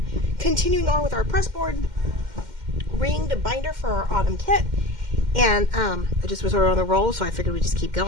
continuing on with our Pressboard ringed binder for our autumn kit. And I just was on the roll, so I figured we'd just keep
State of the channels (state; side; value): late; left; 2.1 ms